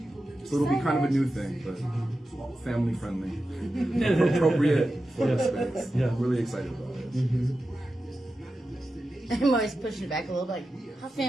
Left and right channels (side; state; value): both; normal; correlation 0.92